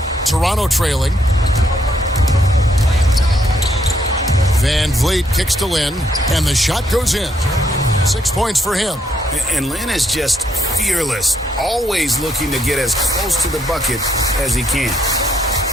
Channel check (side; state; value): both; normal; correlation 0.73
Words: Toronto trailing. VanVleet kicks to Lin, and the shot goes in. 6 points for him. And Lin is just fearless, always looking to get as close to the bucket as he can.